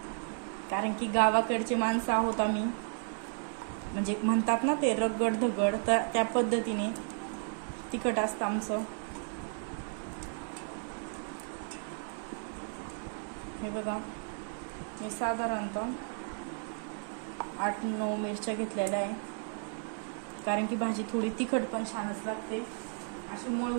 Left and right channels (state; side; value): silent; left; 55 dB below the other